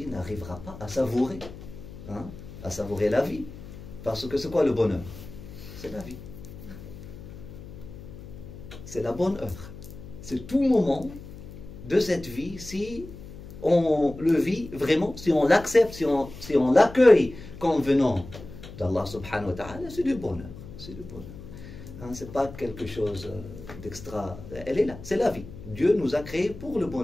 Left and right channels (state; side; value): noise; left; hum, 14 dB below the sound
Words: n'arrivera pas à savourer la vie. Parce que c'est quoi le bonheur? C'est la vie. C'est la bonne heure. C'est tout moment de cette vie, si on le vit vraiment, si on l'accepte, si on l'accueille comme venant d'Allah subhanahu wa ta'ala, c'est du bonheur. C'est du bonheur. C'est pas quelque chose d'extra. Elle est là, c'est la vie. Dieu nous a créés pour le